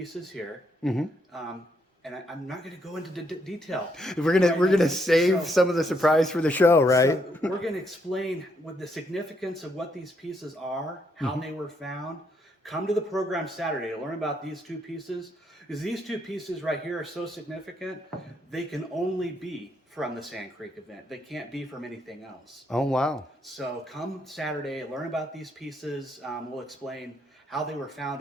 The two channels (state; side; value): normal; both; correlation 0.74